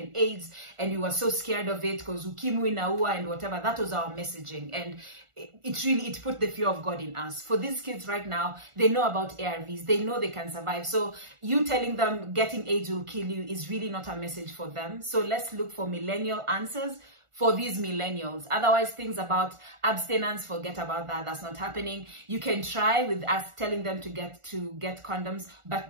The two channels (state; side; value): late; left; 1.4 ms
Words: AIDS, and we were so scared of it because ukimwi naua and whatever. That was our messaging, and it put the fear of God in us. For these kids right now, they know about ARVs, they know they can survive. So you telling them getting AIDS will kill you is really not a message for them. So let's look for millennial answers for these millennials. Otherwise, things about abstinence, forget about that. That's not happening. You can try with us telling them to get condoms,